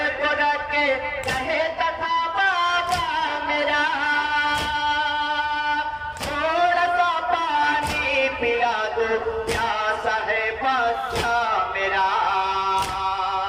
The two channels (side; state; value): both; identical; correlation 1.00